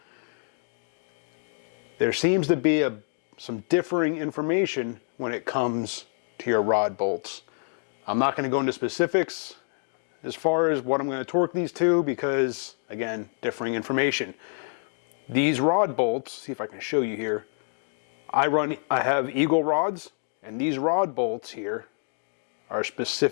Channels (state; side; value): silent; right; 60 dB below the other